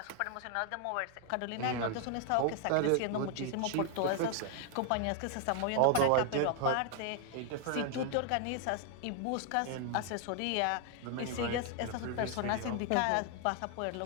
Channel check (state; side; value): different; both; correlation 0.00